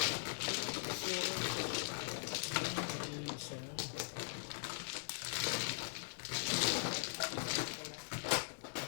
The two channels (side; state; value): right; silent; digital silence